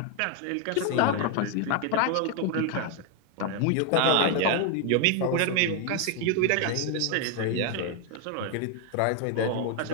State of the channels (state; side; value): different; both; correlation 0.01